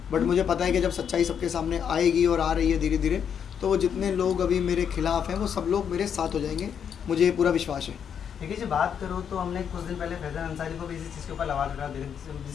बट मुझे पता है कि जब सच्चाई सबके सामने आएगी और आ रही है धीरे धीरे, तो वो जितने लोग अभी मेरे खिलाफ हैं वो सब लोग मेरे साथ हो जाएंगे। मुझे ये पूरा विश्वास है। देखिए जी, बात करो तो हमने कुछ दिन पहले फैज़ल अंसारी को भी इसी चीज़ के ऊपर आवाज़ उठा दी,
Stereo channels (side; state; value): right; quieter; 7.9 dB